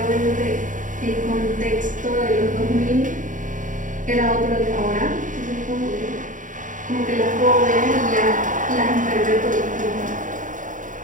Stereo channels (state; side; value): late; left; 0.38 ms